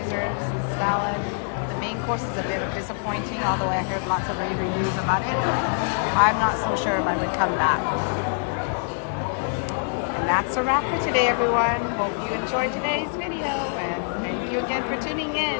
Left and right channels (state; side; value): silent; right; 62 dB below the other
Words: salad. The main course is a bit of disappointing, although I heard lots of rave reviews about it. I'm not so sure if I would come back. And that's a wrap for today, everyone. Hope you enjoyed today's video, and thank you again for tuning